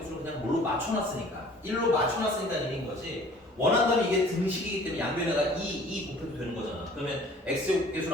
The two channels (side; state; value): both; normal; correlation 0.50